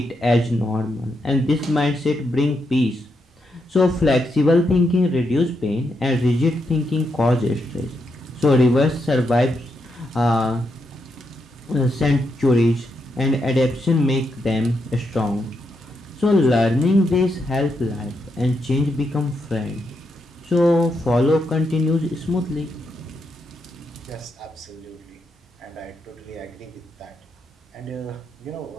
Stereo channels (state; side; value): normal; both; correlation 0.82